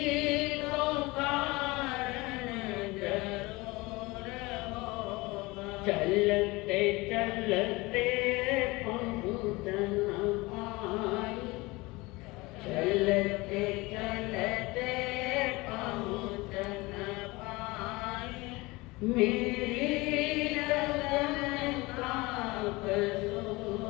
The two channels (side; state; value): right; quieter; 22.8 dB